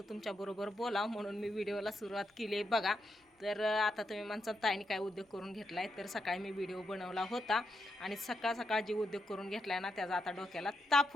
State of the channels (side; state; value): both; normal; correlation 0.83